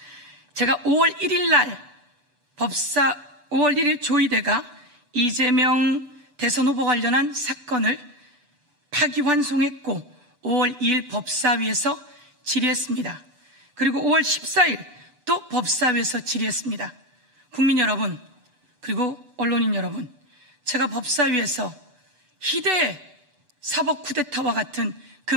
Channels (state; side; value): late; left; 6.9 ms